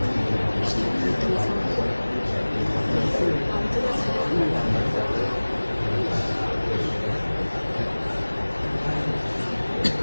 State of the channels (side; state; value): both; inverted; correlation -1.00